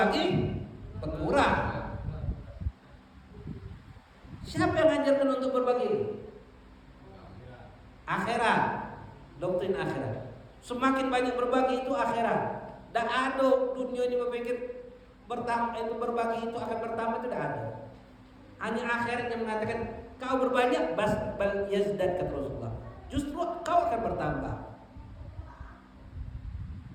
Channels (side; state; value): both; identical; correlation 1.00